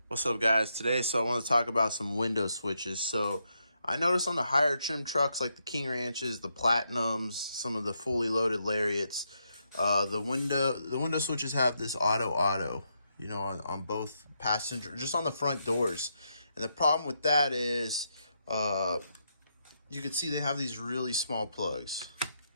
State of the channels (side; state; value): both; inverted; correlation -0.81